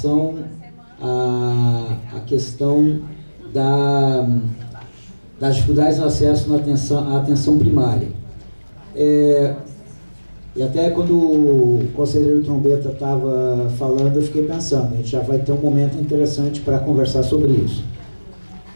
à questão das dificuldades no acesso à atenção primária. E até quando o conselheiro Trombeta estava falando, eu fiquei pensando, a gente já vai ter um momento interessante para conversar sobre isso.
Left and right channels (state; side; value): inverted; both; correlation -1.00